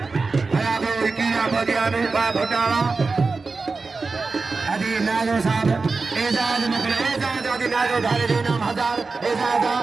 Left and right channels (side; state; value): left; quieter; 4.1 dB